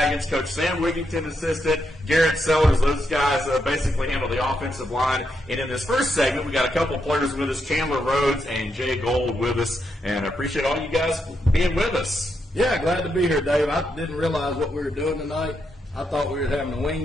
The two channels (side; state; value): both; normal; correlation 0.81